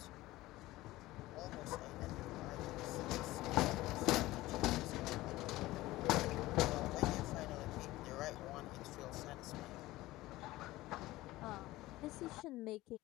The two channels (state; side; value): quieter; right; 17.9 dB